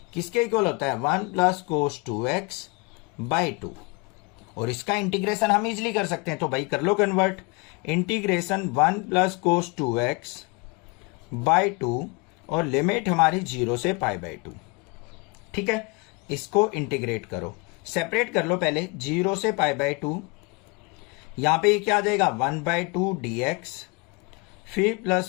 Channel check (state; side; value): quieter; right; 27.1 dB